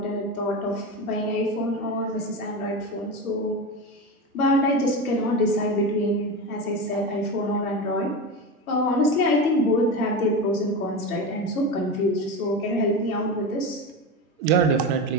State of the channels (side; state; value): both; normal; correlation 0.22